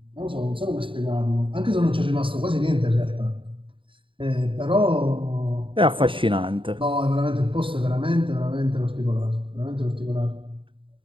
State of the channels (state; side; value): late; left; 0.25 ms